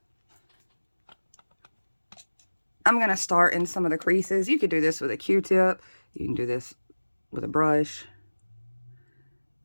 I'm going to start in some of the creases. You could do this with a Q-tip. You can do this with a brush.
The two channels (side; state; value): both; inverted; correlation -1.00